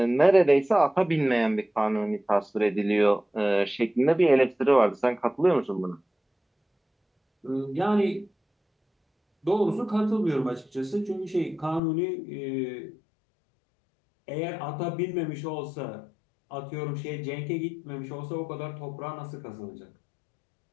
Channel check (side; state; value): right; drops out; at 11.8 s